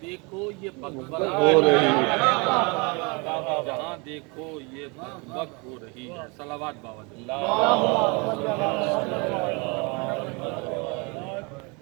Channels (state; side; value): quieter; left; 29.8 dB